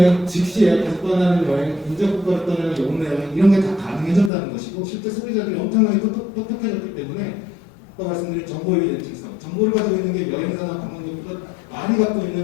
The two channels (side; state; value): right; drops out; at 4.3 s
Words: 즉시 예약해서 떠나는 여행, 인접국가로 떠나는 영내 여행 이런 게 다 가능해졌다는 것이고 실제 소비자들이 엄청나게 똑똑해졌기 때문에 아까 말씀드린 정보의 예측성, 정보를 가지고 있는 게 여행사나 관광객보다 많이 갖고